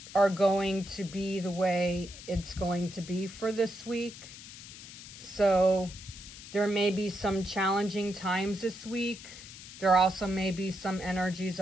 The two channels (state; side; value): noise; left; hiss, 15 dB below the sound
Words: are going to be the way it's going to be for this week. So there may be some challenging times this week. There also may be some energies